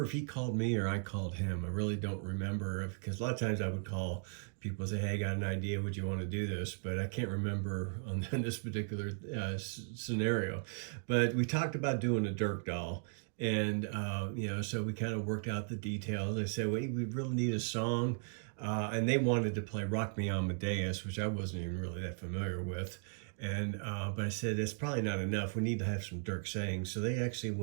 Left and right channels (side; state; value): left; silent; 53 dB below the other